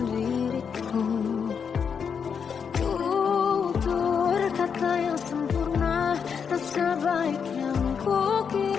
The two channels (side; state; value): right; quieter; 6.7 dB